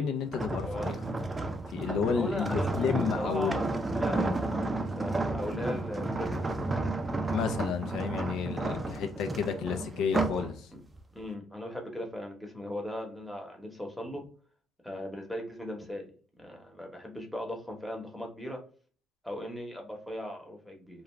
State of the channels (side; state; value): both; normal; correlation 0.74